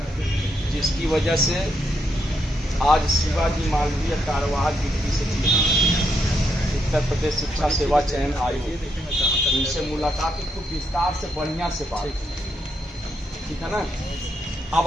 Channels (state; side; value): normal; both; correlation 0.79